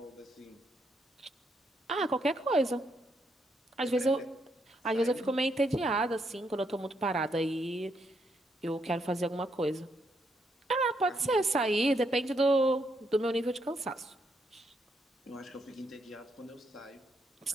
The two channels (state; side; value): normal; both; correlation 0.77